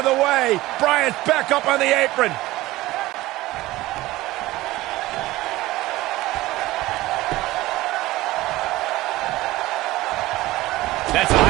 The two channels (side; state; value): left; quieter; 17.9 dB